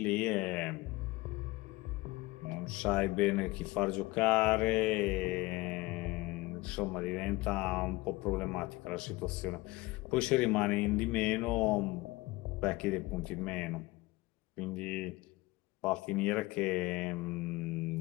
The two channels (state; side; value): quieter; right; 21.2 dB